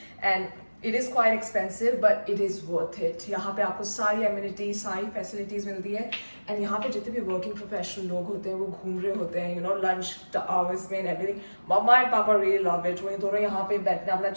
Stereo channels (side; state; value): both; inverted; correlation -1.00